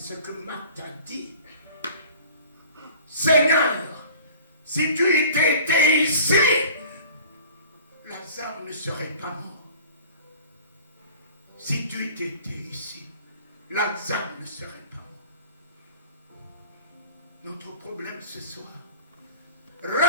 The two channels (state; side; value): inverted; both; correlation -0.46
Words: que Marthe a dit. Seigneur, si tu étais ici, Lazare ne serait pas mort. Si tu étais ici, Lazare ne serait pas mort. Notre problème ce soir,